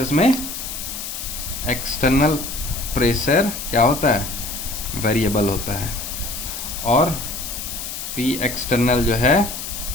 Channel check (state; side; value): noise; left; hiss, 7 dB below the sound